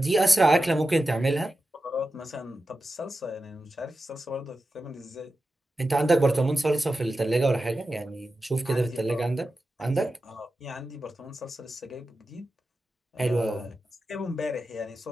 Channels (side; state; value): both; normal; correlation 0.92